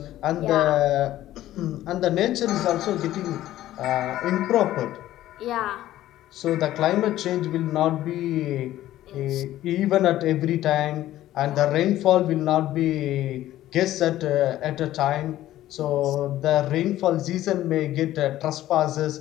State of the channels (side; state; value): right; quieter; 14.0 dB